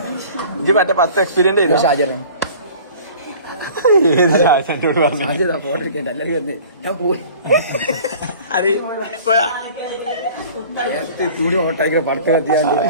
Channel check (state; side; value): inverted; both; correlation -0.46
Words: ഇത് മറ്റേ 10 എക്സ്പീരിയൻസ് ചെയ്തു. ഷാജറൻ ഏത് ഷാജനോട് പറഞ്ഞു? ഫോട്ടോ എടുക്കേണ്ട എല്ലാവരും വന്ന് ഞാൻ പോയി തുണി ഓട്ടായിക്കുന്ന പടക്കം കത്തിയാണ്ട്